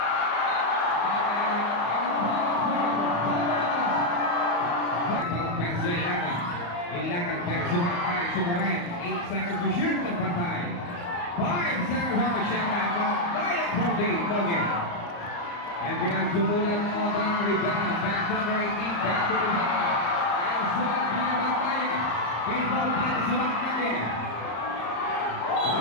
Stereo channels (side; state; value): right; late; 34 ms